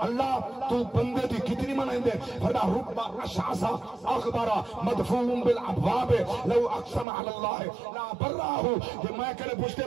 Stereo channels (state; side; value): drops out; left; at 7.1 s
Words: اللہ تو بندے دی کتنی منندے فردا ربا اشعصا اخبارا مدفون بالابواب لو اقسم علی اللہ لا براہو. کہ میں کرے پوچھتے